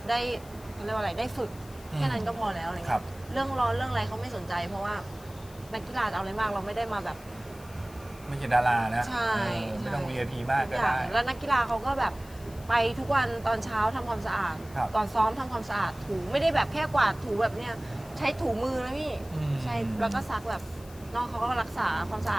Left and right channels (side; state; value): left; noise; hiss, 22 dB below the sound